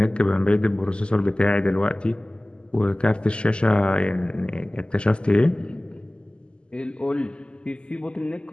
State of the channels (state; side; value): late; right; 0.051 ms